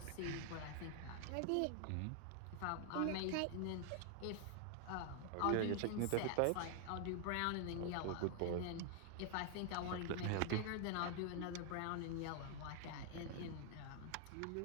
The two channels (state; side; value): different; both; correlation 0.00